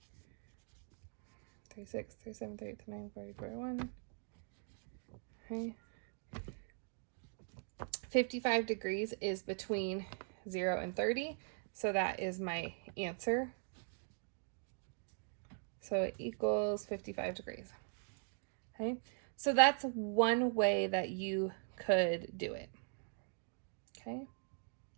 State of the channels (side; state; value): left; silent; 50 dB below the other